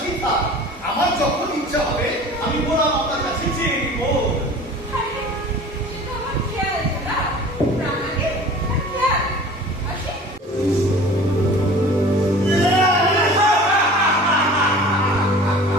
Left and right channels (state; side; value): normal; both; correlation 0.43